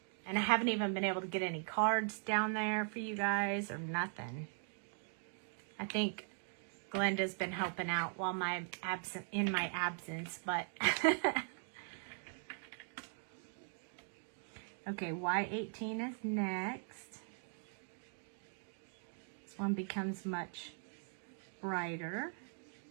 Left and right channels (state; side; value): silent; left; 51 dB below the other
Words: And I haven't even been able to get any cards down there for you guys or nothing. I think Glenda's been helping out while in my absence, but okay, Y18 is next. This one becomes much brighter